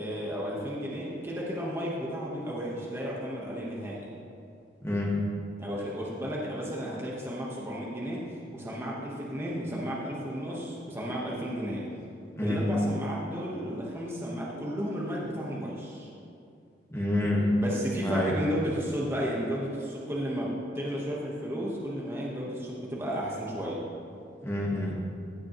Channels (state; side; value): normal; both; correlation 0.71